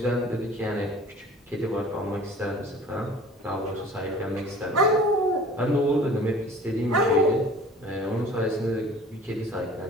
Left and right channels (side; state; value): both; normal; correlation 0.45